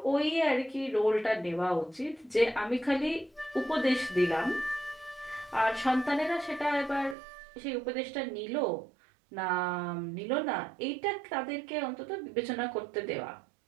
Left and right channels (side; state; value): left; drops out; at 7.2 s